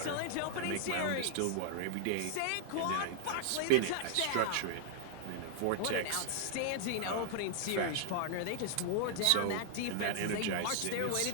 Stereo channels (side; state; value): both; different; correlation -0.01